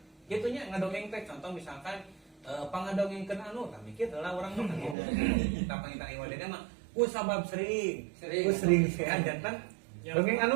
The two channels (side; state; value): left; drops out; at 5.0 s